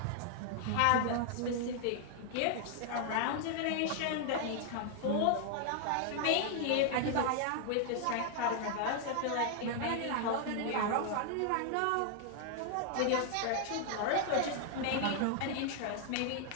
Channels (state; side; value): different; both; correlation 0.00